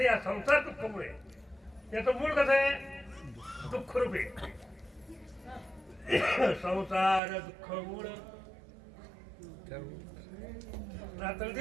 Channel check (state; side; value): drops out; left; at 7.2 s